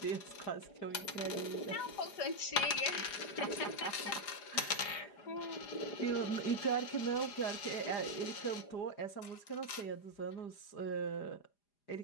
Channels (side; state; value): right; late; 4.9 ms